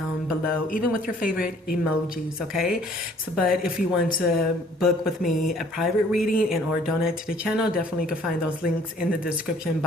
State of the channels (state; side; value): normal; both; correlation 0.58